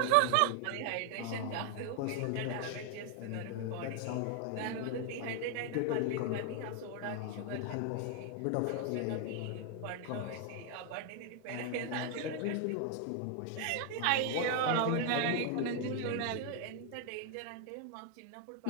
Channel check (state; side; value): different; both; correlation 0.00